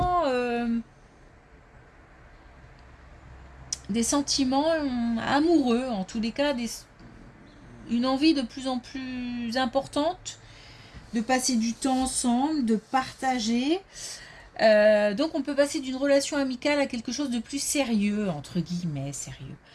amoureux, en tous les cas, une envie de plus en plus importante de passer du temps ensemble, de partager. Donc on peut passer d'une relation amicale à quelque chose de plus sérieux, entre guillemets, sérieux.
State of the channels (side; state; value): both; identical; correlation 1.00